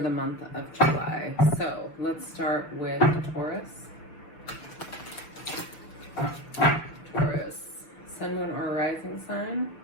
month of July. So let's start with Taurus. Taurus, sun, moon, or rising sign.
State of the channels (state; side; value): late; right; 6.3 ms